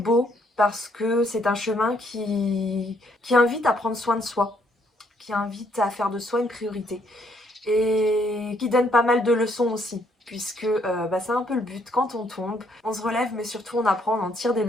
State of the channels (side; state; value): both; normal; correlation 0.69